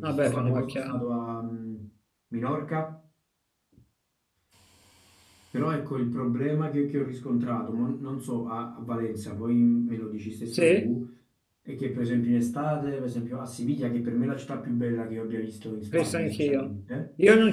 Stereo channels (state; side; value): identical; both; correlation 1.00